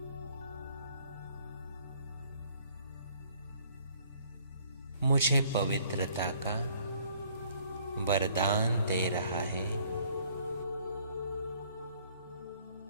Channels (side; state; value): both; inverted; correlation -0.61